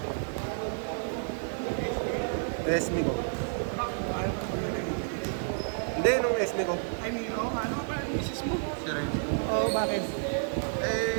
SB ko. Bakit? Ayaw ko na maglaro yun. Hindi, nung SB ko. Ay, Milo, ano pa ang isis mo? Si Ren. Oo, bakit?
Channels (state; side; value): silent; left; 58 dB below the other